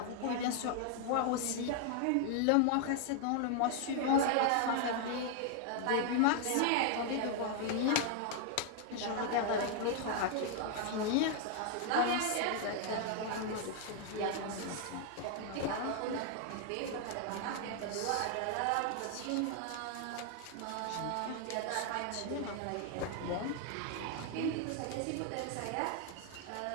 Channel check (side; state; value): both; different; correlation 0.00